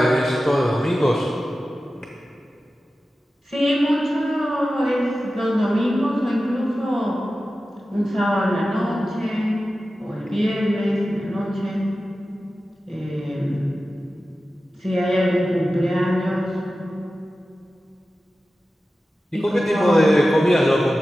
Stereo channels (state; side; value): normal; both; correlation 0.94